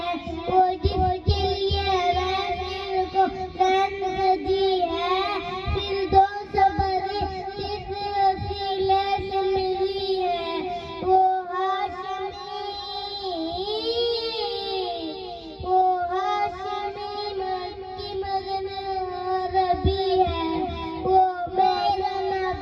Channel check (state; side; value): identical; both; correlation 1.00